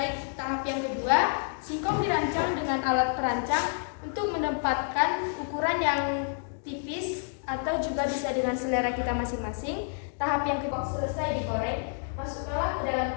Tahap yang kedua, singkong dirancang dengan alat perancang untuk menempatkan ukuran yang tipis atau juga bisa dengan selera kita masing-masing. Tahap yang kedua, selesai digoreng, masukkanlah ke dalam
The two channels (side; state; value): right; silent; digital silence